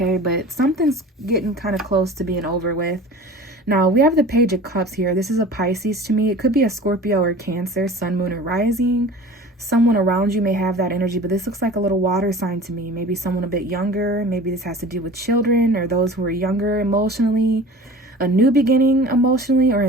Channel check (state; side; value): normal; both; correlation 0.40